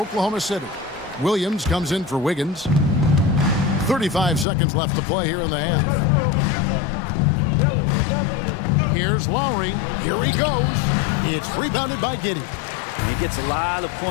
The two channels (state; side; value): drops out; right; at 4.5 s